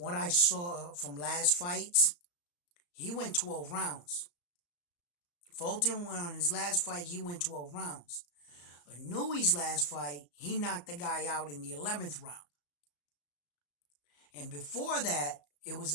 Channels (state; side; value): late; right; 34 ms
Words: I saw from last fights, he went 12 rounds. Fulton went on his last fight, he went 12 rounds. Inoue's last fight, he knocked the guy out in the 11th round. And before that, it was